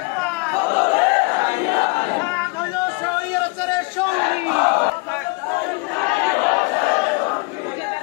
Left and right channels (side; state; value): right; quieter; 29.2 dB